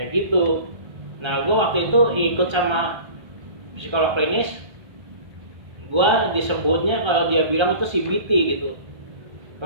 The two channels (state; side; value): late; left; 1.3 ms